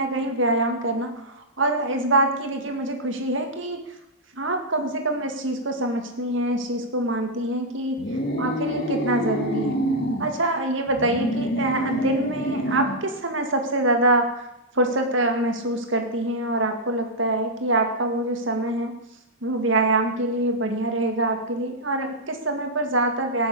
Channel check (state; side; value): normal; both; correlation -0.07